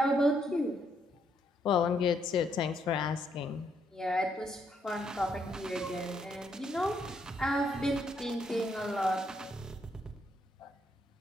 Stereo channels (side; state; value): both; normal; correlation 0.74